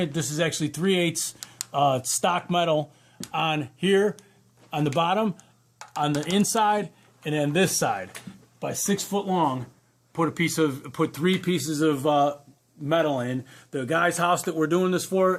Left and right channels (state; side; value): identical; both; correlation 1.00